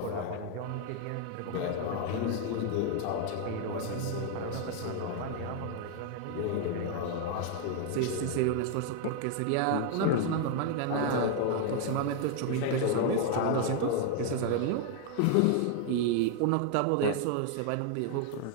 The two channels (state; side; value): different; both; correlation 0.00